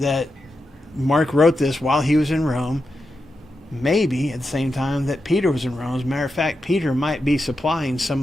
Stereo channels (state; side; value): normal; both; correlation 0.88